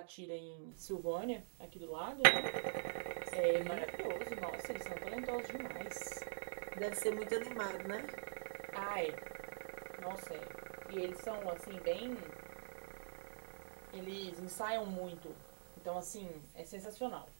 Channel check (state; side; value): silent; left; digital silence